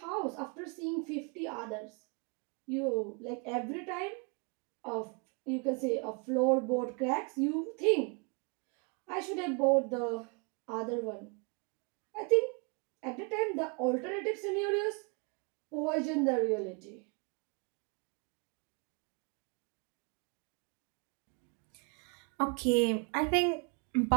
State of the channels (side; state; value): left; quieter; 34.4 dB